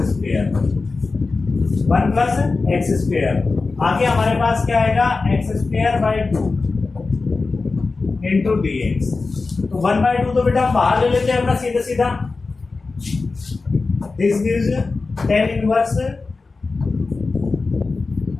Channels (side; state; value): right; quieter; 3.9 dB